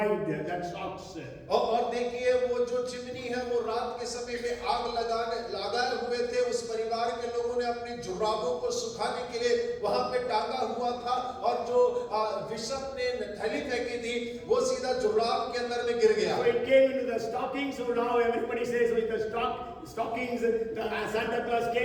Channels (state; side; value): identical; both; correlation 1.00